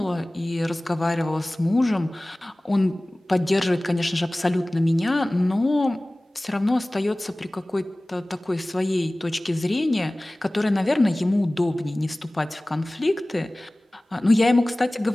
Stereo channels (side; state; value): both; normal; correlation 0.98